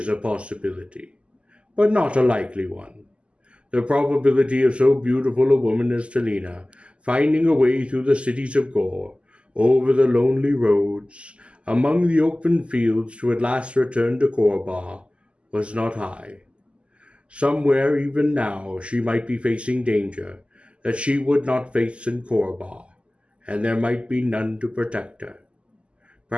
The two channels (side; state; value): left; late; 0.054 ms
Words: a possibility, but not a likely one. The probability of so beautiful a woman as Talina finding a way through the cities of Gor, over the lonely roads, among the open fields to at last return to Korba, was not high. Somewhere even now she might be facing danger that she would not face in Korba, and there might be none to protect her.